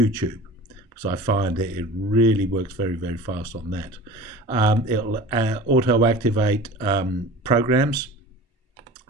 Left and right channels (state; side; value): normal; both; correlation 0.39